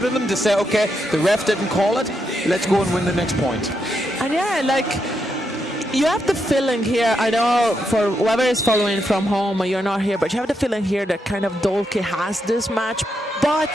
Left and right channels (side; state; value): both; normal; correlation 0.82